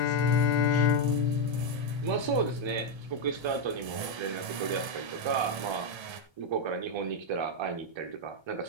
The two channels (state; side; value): late; left; 1.3 ms